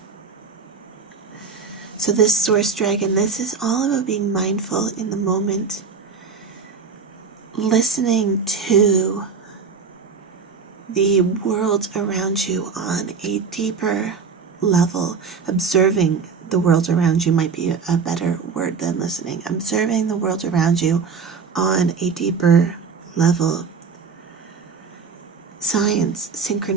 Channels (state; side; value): quieter; left; 5.6 dB